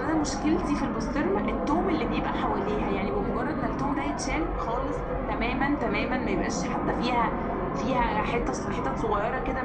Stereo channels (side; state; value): both; identical; correlation 1.00